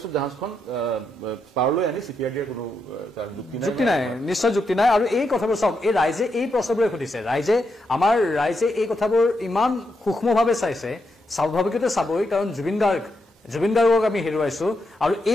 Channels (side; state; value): both; normal; correlation 0.82